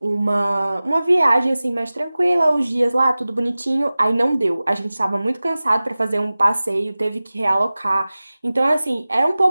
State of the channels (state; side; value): inverted; both; correlation -0.97